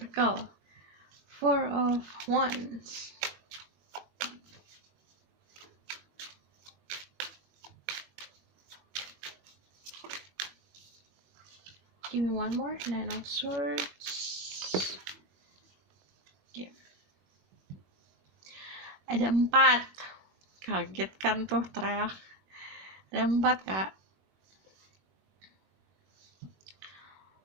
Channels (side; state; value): left; late; 21 ms